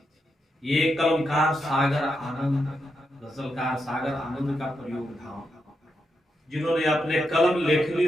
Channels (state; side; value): normal; both; correlation 0.84